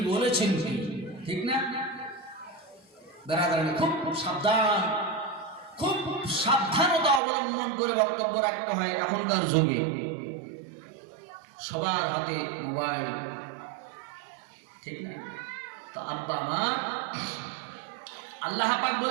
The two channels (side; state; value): left; drops out; at 7.2 s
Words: বলেছেন কি, ঠিক না? বেরাদারানি খুব সাবধান, খুব সাবধানতা অবলম্বন করে বক্তব্য রাখতে হয়। এখনকার যুগে সবার হাতে মোবাইল, ঠিক না? তো আব্বা আমার আল্লাহ পাক